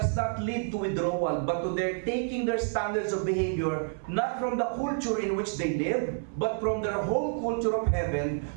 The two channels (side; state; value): left; silent; 57 dB below the other